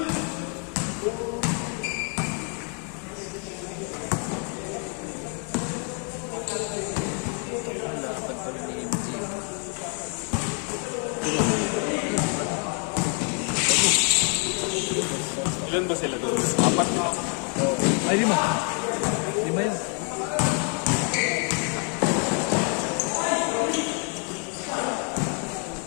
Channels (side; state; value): right; quieter; 39.3 dB